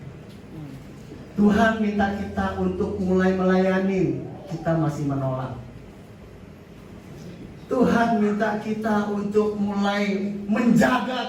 Tuhan minta kita untuk mulai melayani, kita masih menolak. Tuhan minta kita untuk mulai menjaga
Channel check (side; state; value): both; identical; correlation 1.00